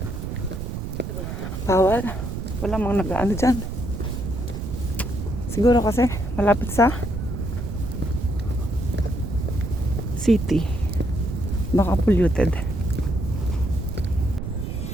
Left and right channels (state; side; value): noise; right; rumble, 6 dB below the sound